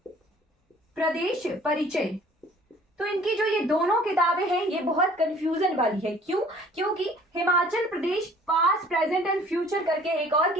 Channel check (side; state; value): both; normal; correlation 0.53